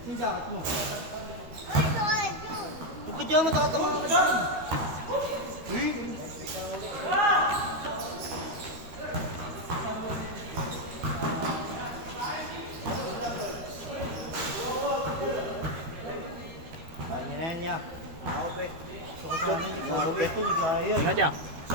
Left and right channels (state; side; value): late; left; 13 ms